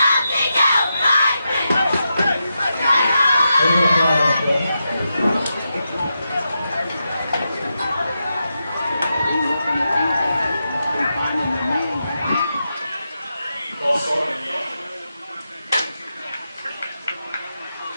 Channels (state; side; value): inverted; both; correlation -0.87